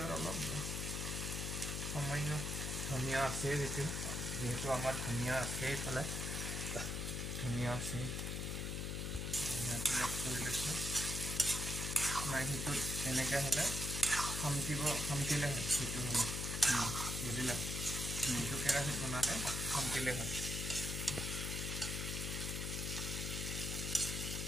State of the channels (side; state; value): left; noise; hum, 2 dB below the sound